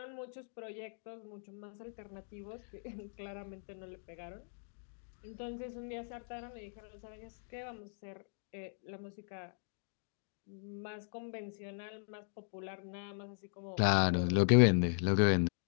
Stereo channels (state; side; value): silent; right; digital silence